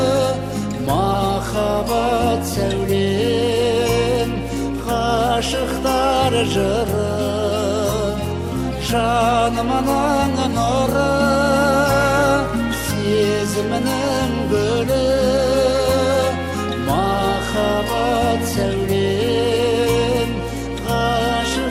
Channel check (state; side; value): identical; both; correlation 1.00